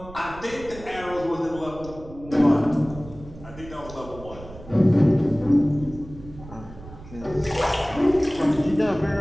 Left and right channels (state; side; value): noise; right; rumble, 16 dB below the sound